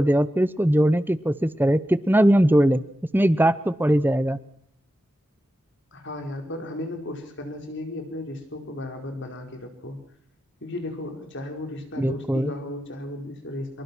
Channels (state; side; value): normal; both; correlation 0.91